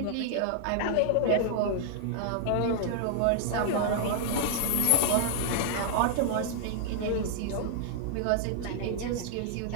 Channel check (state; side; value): different; both; correlation -0.01